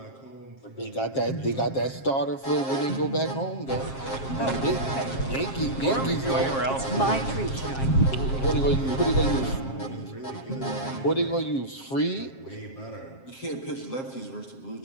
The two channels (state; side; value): late; right; 7.5 ms